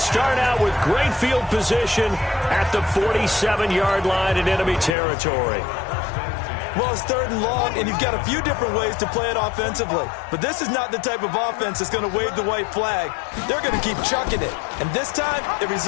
out with great field position at the 47-yard line in enemy territory. Well, it's 3rd and long, and you've got a few different ways to play it offensively. But this is not the type of offense that's going to wave the white flag. They're going to keep chucking it. And this time, it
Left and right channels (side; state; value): right; drops out; at 5.0 s